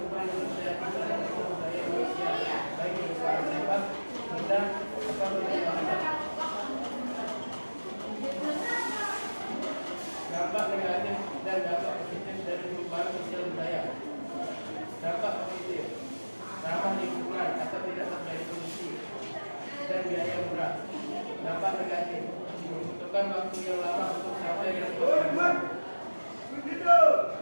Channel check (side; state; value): both; inverted; correlation -1.00